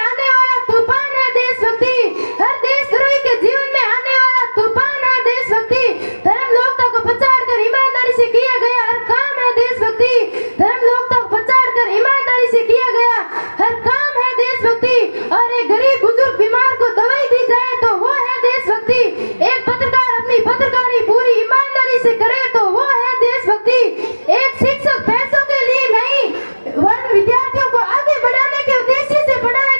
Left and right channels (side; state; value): both; inverted; correlation -1.00